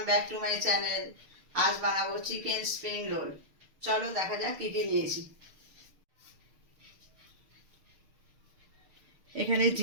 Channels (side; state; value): left; late; 6.6 ms